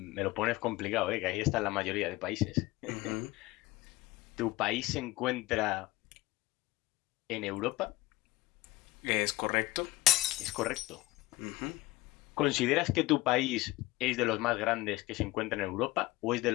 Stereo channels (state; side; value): quieter; right; 19.2 dB